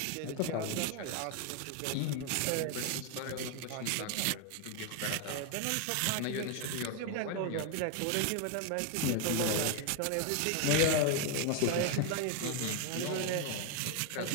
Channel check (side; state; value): both; different; correlation 0.01